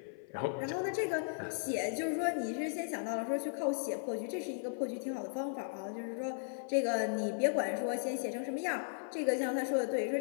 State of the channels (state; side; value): silent; right; 54 dB below the other